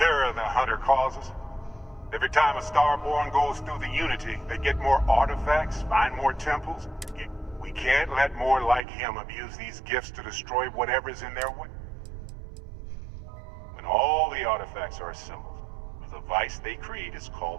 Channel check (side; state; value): left; drops out; at 8.8 s